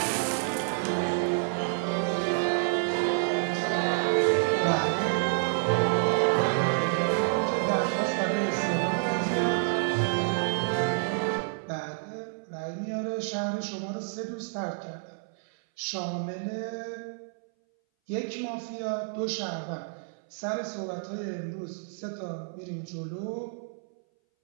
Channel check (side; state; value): left; silent; 59 dB below the other